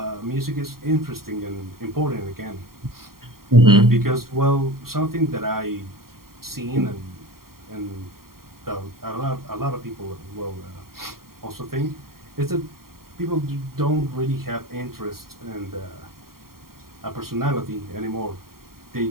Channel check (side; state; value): left; late; 0.93 ms